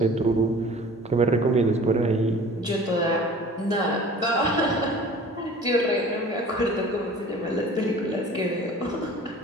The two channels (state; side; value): normal; both; correlation 0.45